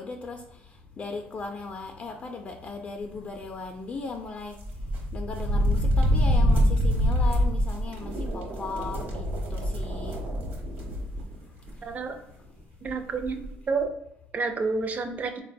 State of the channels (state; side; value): normal; both; correlation 0.73